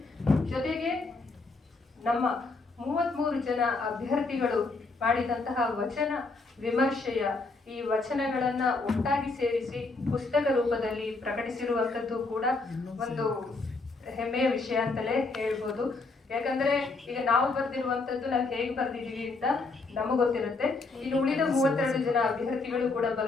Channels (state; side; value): quieter; right; 3.6 dB